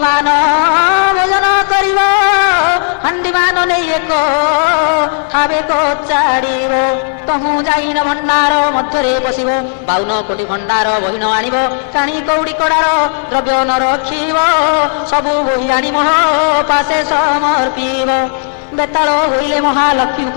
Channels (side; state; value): right; silent; digital silence